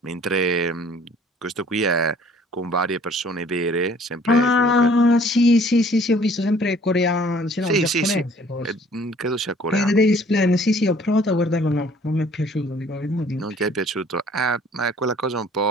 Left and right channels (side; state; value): both; normal; correlation 0.56